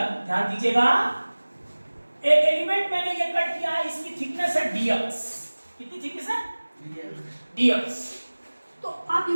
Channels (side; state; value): both; inverted; correlation -1.00